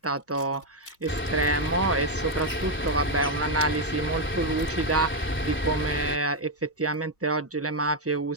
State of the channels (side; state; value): both; normal; correlation 0.03